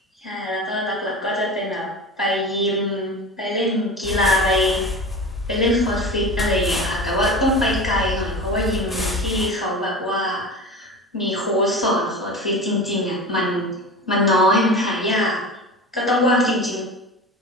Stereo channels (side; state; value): both; normal; correlation 0.31